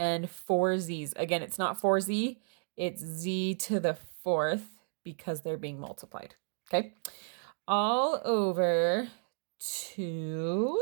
4 Z's. Again, it's not 4Z, it's Z to the 4th because they're being multiplied. Okay. All over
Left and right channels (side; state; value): left; silent; 56 dB below the other